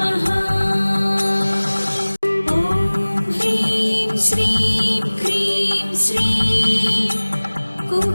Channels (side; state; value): both; inverted; correlation -1.00